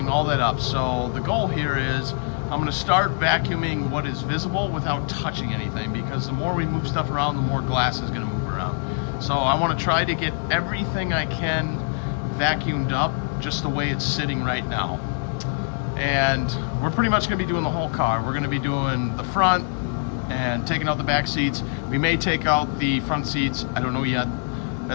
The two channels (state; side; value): silent; right; 63 dB below the other